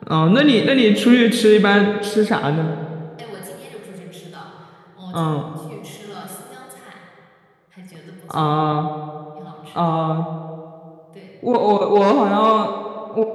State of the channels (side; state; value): both; identical; correlation 1.00